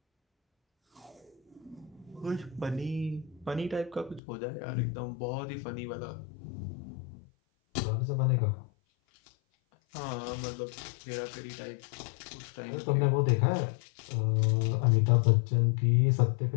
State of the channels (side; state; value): right; drops out; at 4.2 s